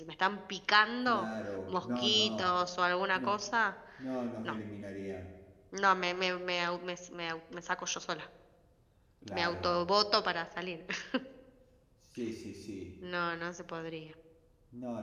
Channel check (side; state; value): both; identical; correlation 1.00